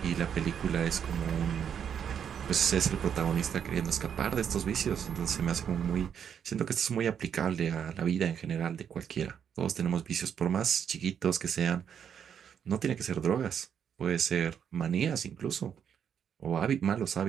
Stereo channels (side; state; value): left; quieter; 8.2 dB